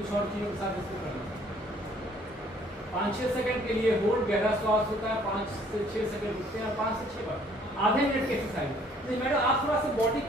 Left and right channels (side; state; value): both; normal; correlation 0.60